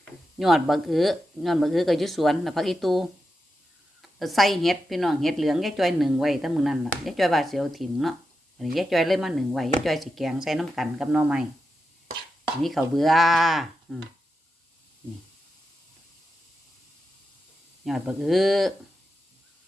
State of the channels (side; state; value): both; normal; correlation 0.88